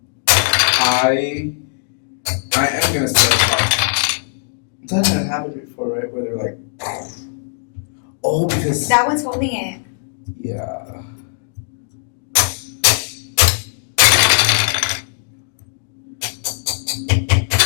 I am gonna start a podcast. That had happened before, right? Where they're like, oh, because that one's holding it. Yeah.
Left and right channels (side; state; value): right; silent; 67 dB below the other